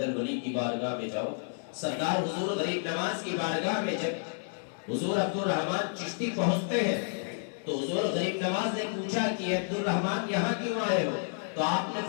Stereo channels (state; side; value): silent; right; digital silence